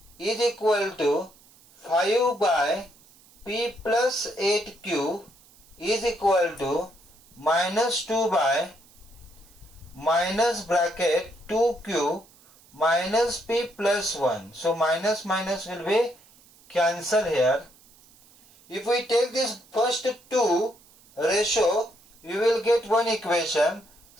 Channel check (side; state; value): right; noise; hiss, 27 dB below the sound